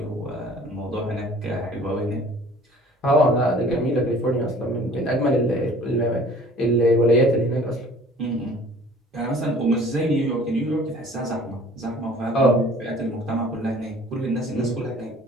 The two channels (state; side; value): normal; both; correlation 0.50